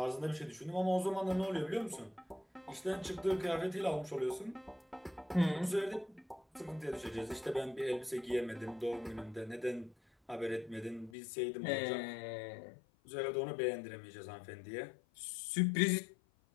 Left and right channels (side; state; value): right; drops out; at 11.1 s